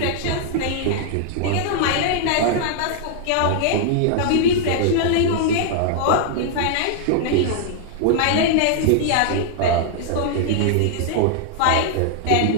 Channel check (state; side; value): different; both; correlation -0.01